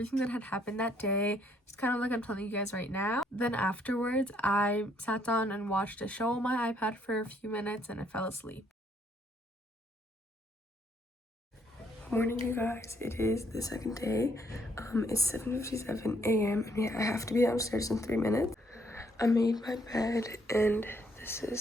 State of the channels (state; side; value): normal; both; correlation 0.69